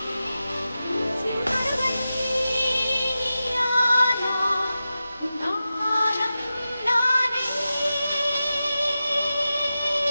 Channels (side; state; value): both; inverted; correlation -0.93